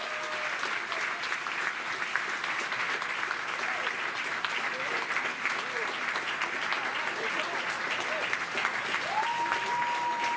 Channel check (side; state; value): both; identical; correlation 1.00